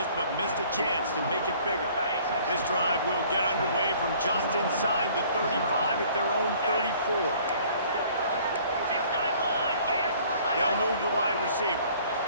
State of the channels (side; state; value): both; inverted; correlation -0.55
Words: but missed a chance to make it bigger. This drive will get underway from just inside the 35 at their own 34. They'll move the wide receiver.